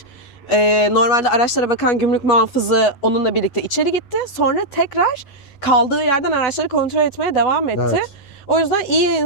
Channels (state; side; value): late; right; 11 ms